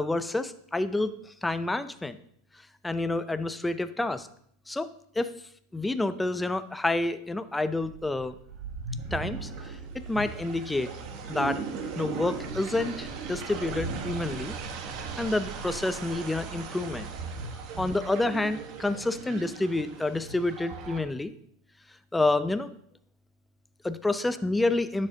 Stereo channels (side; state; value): both; normal; correlation 0.83